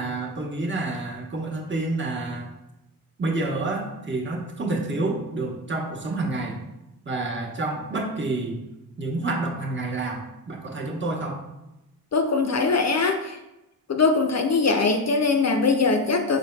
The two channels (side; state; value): both; normal; correlation 0.17